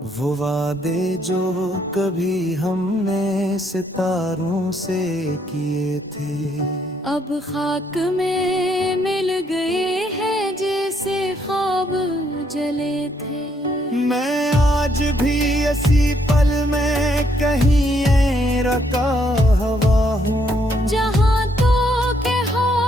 वो वादे जो कभी हमने सितारों से किए थे, अब खाक में मिल गए ऐसी पल में कहीं रका हवा हूँ। जहाँ तो के हो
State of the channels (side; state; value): both; normal; correlation 0.71